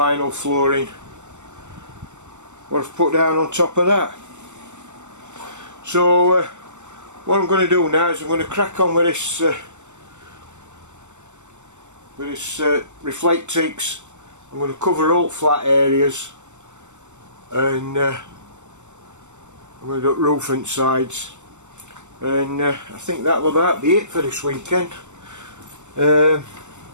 flooring what I've put down on top of that. So what I'm going to do now is I'm going to crack on with this Reflectix. I'm going to cover all flat areas, and I'm going to do roof and sides, and I think that'll about be it for this weekend. It's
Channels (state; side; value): late; left; 0.84 ms